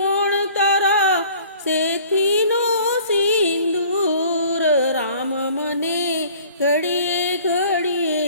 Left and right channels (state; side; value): inverted; both; correlation -0.51